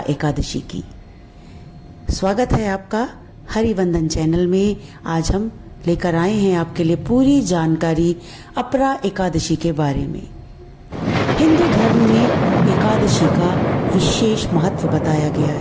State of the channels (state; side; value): identical; both; correlation 1.00